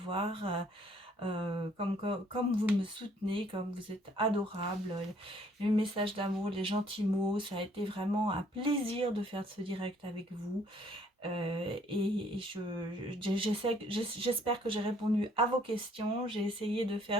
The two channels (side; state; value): both; normal; correlation 0.62